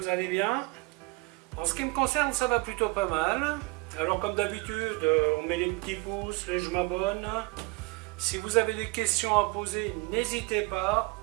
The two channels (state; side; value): quieter; left; 26.4 dB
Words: allez bien. En ce qui me concerne, ça va plutôt pas mal. Alors comme d'habitude, on met les petits pouces, les je m'abonne. Si vous avez des questions à poser, n'hésitez pas.